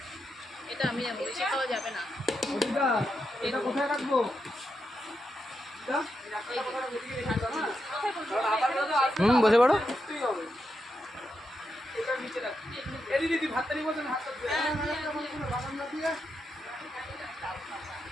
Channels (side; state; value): both; normal; correlation 0.85